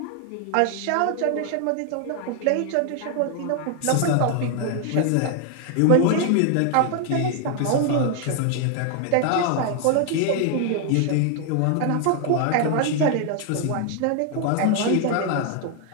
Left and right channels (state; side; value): different; both; correlation 0.00